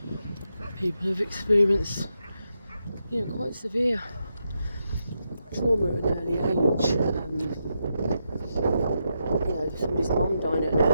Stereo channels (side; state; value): both; inverted; correlation -0.84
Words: people have experienced quite severe trauma at an early age. Somebody's mum died at an